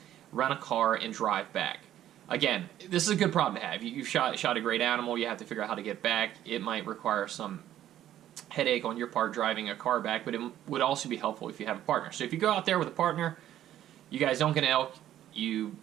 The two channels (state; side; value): quieter; left; 12.1 dB